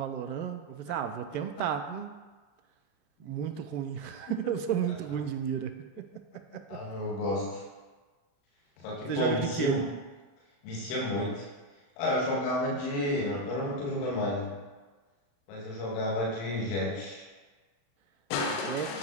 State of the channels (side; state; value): right; late; 35 ms